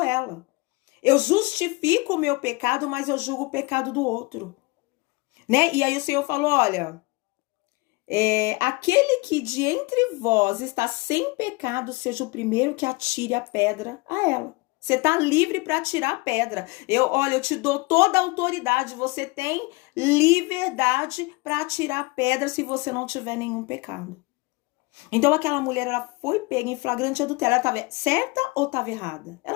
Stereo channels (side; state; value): right; quieter; 25.8 dB